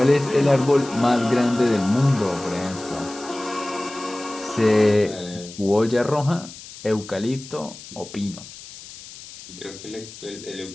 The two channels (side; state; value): left; noise; hiss, 16 dB below the sound